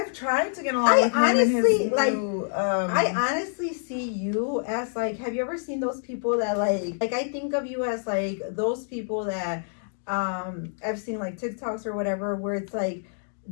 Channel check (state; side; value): silent; right; digital silence